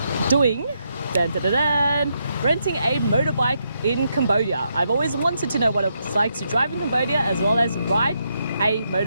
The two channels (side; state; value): both; inverted; correlation -0.80